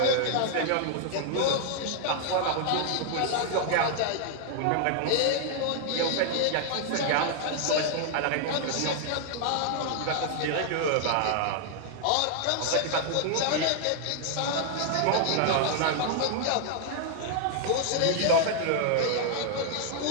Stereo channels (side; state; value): both; different; correlation 0.00